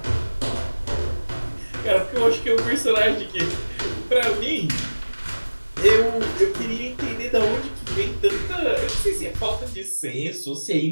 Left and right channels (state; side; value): inverted; both; correlation -1.00